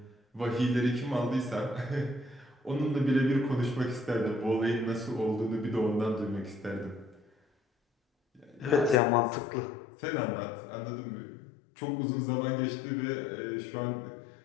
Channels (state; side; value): drops out; right; at 9.0 s